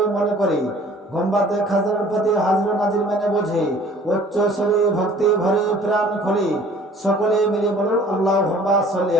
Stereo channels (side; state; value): both; normal; correlation 0.52